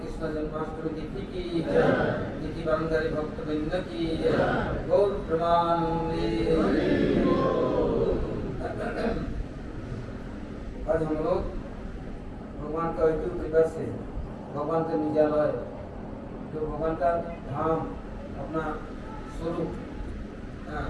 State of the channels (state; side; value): identical; both; correlation 1.00